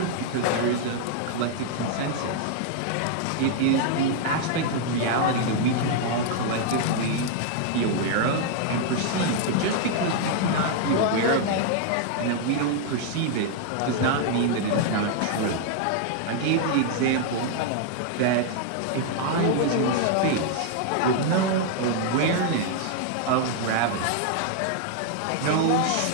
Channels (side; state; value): both; different; correlation 0.00